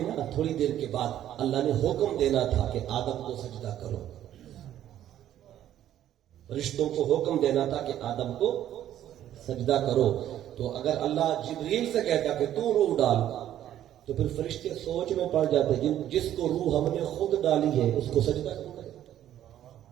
نا تھوڑی دیر کے بعد اللہ نے حکم دینا تھا کہ آدم کو سجدہ کرو. رشتوں کو حکم دینا تھا کہ آدم کو سجدہ کرو. تو اگر اللہ جبریل سے کہتا کہ تو روح ڈال, تو پھر فرشتے سوچ میں پڑ جاتے, جس کو روح ہم نے خود ڈالی ہے اس کو سجدہ کرو.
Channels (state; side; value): quieter; left; 11.7 dB